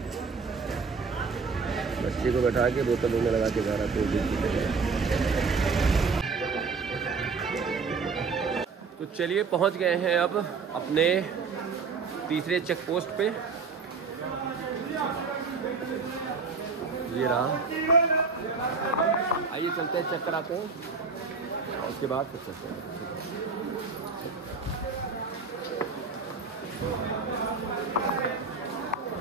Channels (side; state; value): left; quieter; 4.7 dB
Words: बच्चे को बैठा के बोतल में लगा के जा रहा है। तो चलिए पहुंच गए हैं अब अपने तीसरे चेक पोस्ट पे। ये रहा। आइए चलते हैं, चेक कराते हैं और उसके बाद फिर चलते हैं।